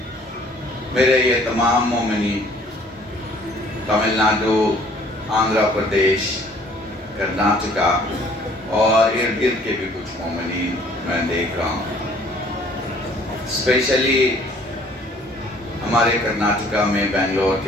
میرے یہ تمام مومنین، تمل ناڈو، آندھرا پردیش، کرناٹکا اور ارد گرد کے بھی کچھ مومنین میں دیکھ رہا ہوں۔ اسپیشلی ہمارے کرناٹکا میں بنگلور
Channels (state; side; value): normal; both; correlation 0.57